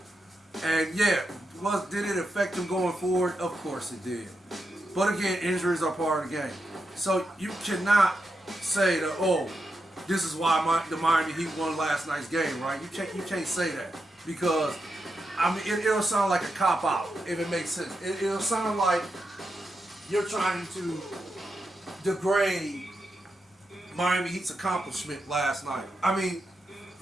And yeah, did it affect him going forward? Of course it did. But again, injuries are part of the game. So you cannot say that, oh, this is why the Miami Heat won last night's game, right? You can't say that, because it'll sound like a cop out if it makes sense. It'll sound like you're trying to degrade Miami Heat's accomplishment last night.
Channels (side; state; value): both; normal; correlation 0.87